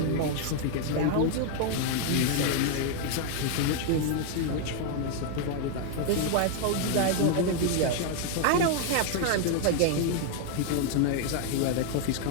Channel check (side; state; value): both; different; correlation 0.00